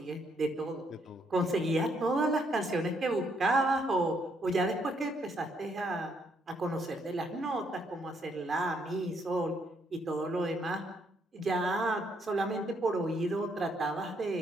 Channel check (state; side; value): normal; both; correlation 0.72